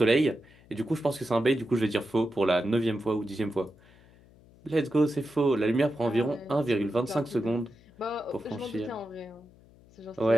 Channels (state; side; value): noise; left; hum, 26 dB below the sound